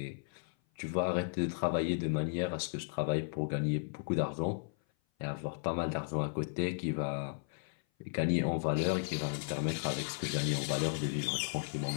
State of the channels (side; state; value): right; silent; 54 dB below the other